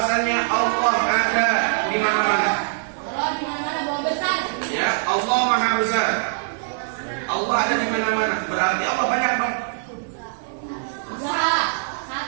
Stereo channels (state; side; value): silent; left; digital silence